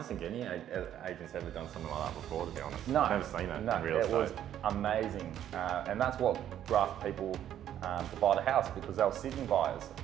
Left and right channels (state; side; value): quieter; left; 10.9 dB